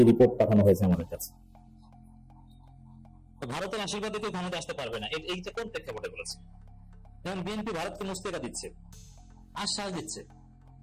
রিপোর্ট পাঠানো হয়েছে আমাদের কাছে। ভারতের আশীর্বাদে কেউ ক্ষমতা আসতে পারবে না, এইটা কোন প্রেক্ষাপটে বলেছে? যেমন বিএনপি ভারতকে মুস্তেকা দিচ্ছে, আশ্বাস দিচ্ছে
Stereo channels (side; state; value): both; identical; correlation 1.00